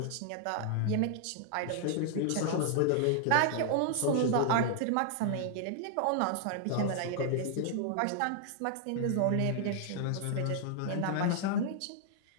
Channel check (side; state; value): both; different; correlation -0.01